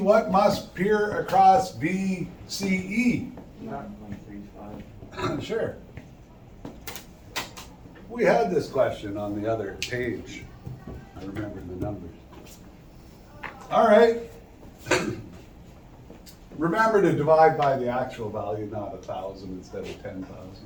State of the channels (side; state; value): both; identical; correlation 1.00